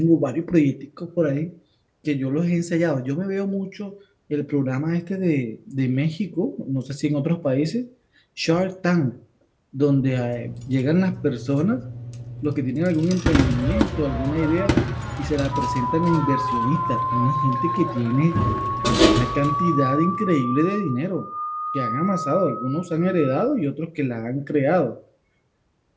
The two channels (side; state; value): both; identical; correlation 1.00